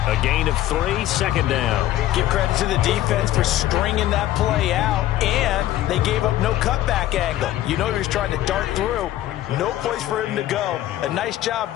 A gain of 3, 2nd down. Give credit to the defense for stringing that play out, and they gave up no cutback angle. You know he was trying to dart through. No place for him to go. A nice job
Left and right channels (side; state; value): right; quieter; 13.9 dB